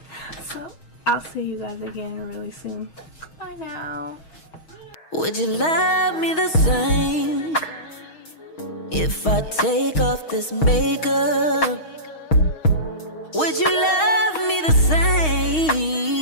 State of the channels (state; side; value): late; right; 6.4 ms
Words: so I'll see you guys again really soon. Bye now. Would you love me the same if I take off this makeup? Would you love me the